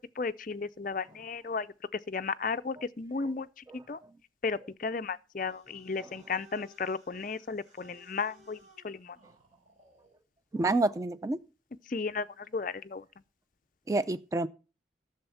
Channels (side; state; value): both; normal; correlation 0.34